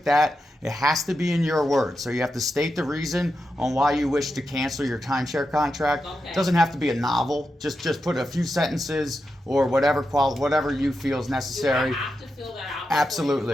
that. It has to be in your words. So you have to state the reason on why you wish to cancel your timeshare contract. Okay. It doesn't have to be a novel. Just put a few sentences or whatever you feel is necessary. Do I have to fill that out before Absolutely.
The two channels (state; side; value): normal; both; correlation 0.88